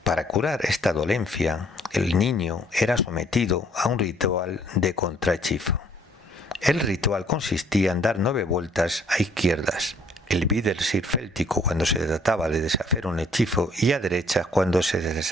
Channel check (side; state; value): both; normal; correlation 0.61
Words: Para curar esta dolencia, el niño era sometido a un ritual de contrahechizo. El ritual consistía en dar 9 vueltas a izquierdas, el Wiedersir céltico cuando se trataba de deshacer un hechizo y a derechas cuando